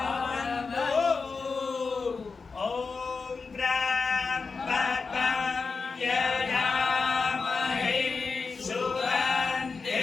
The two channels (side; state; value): right; quieter; 4.6 dB